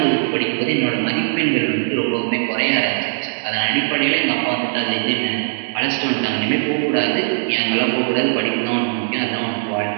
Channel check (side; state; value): left; silent; digital silence